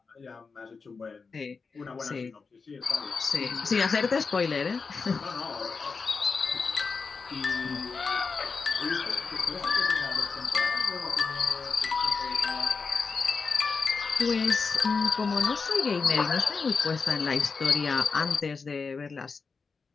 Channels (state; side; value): quieter; right; 4.8 dB